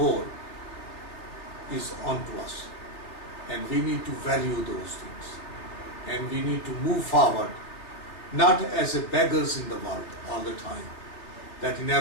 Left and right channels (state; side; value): late; right; 3.4 ms